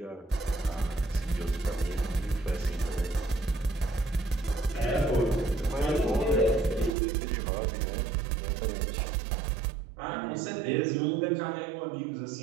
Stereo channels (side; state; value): left; drops out; at 7.0 s